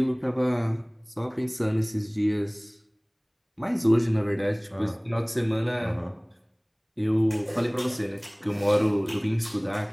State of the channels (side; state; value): both; identical; correlation 1.00